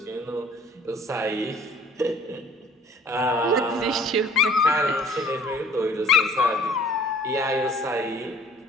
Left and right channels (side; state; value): both; normal; correlation 0.53